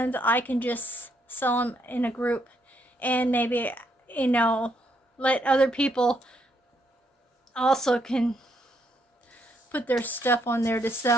I can just sell them in a group, and maybe, let other people also can put their stuff on there to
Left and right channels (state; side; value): normal; both; correlation 0.74